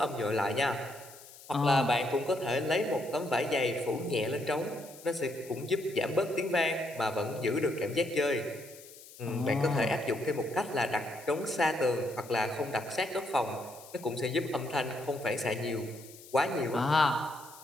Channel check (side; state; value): left; noise; hiss, 19 dB below the sound